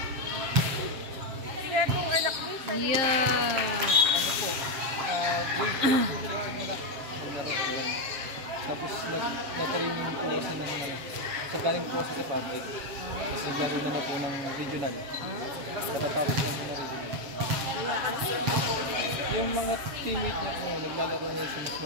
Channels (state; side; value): late; left; 7.4 ms